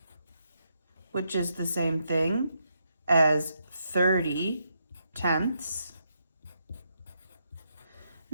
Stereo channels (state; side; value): inverted; both; correlation -0.80